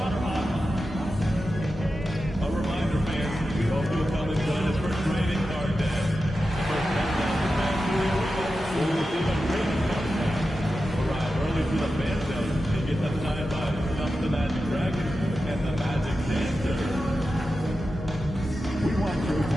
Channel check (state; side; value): normal; both; correlation 0.91